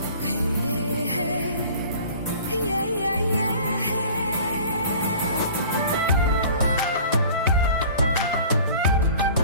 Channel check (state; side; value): inverted; both; correlation -0.46